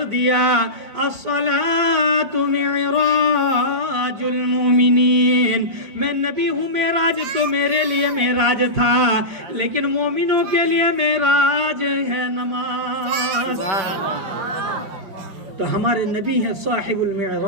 دیا الصلاۃ معراج المومنین. میں نبی ہوں, معراج تو میرے لیے معراج تھا, لیکن مومنوں کے لیے معراج ہے نماز. تو ہمارے نبی ہیں صاحب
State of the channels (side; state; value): left; late; 5.8 ms